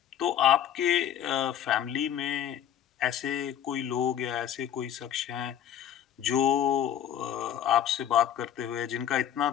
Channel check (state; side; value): quieter; right; 10.2 dB